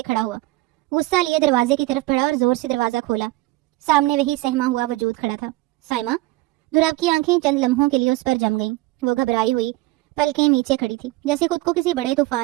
کھڑا ہوا، غصہ لیے دروازے کی طرف بڑھا اور زور سے دروازہ کھولا۔ سامنے وہی سہما ہوا وجود کھڑا تھا، سائمہ۔ دراب کی آنکھیں چند لمحوں کے لیے اس پر جم گئیں۔ وہ گھبرائی ہوئی پلکیں نیچے کھڑی تھی جیسے خود کو کسی بڑے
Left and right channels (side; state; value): left; quieter; 19.8 dB